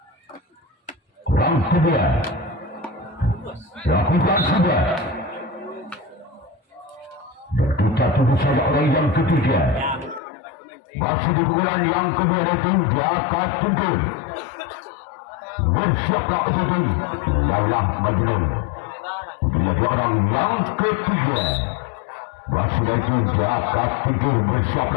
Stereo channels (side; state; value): right; drops out; at 10.2 s